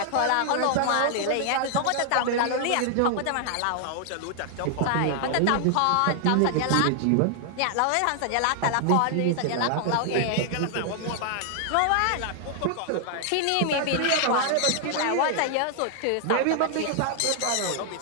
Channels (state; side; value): different; both; correlation 0.00